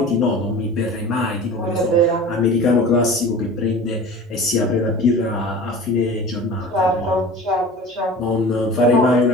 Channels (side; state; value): both; normal; correlation 0.38